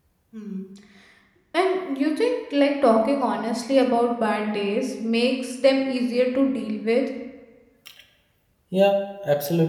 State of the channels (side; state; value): both; identical; correlation 1.00